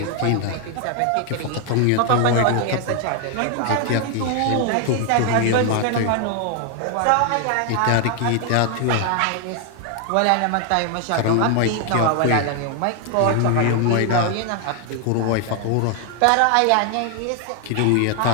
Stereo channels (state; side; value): different; both; correlation 0.01